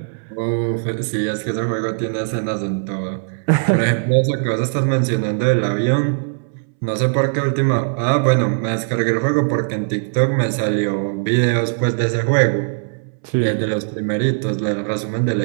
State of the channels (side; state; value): left; silent; 66 dB below the other